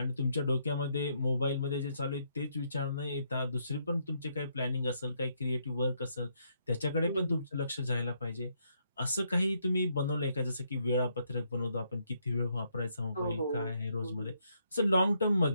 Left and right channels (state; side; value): inverted; both; correlation -0.74